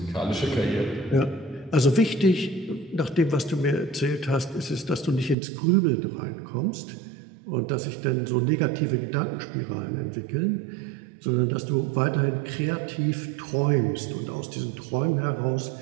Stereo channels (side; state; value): left; drops out; at 5.4 s